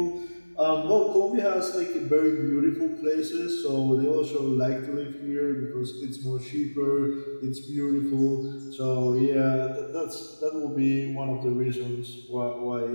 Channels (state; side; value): inverted; both; correlation -1.00